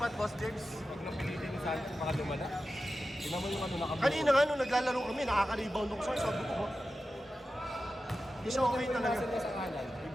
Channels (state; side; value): normal; both; correlation 0.93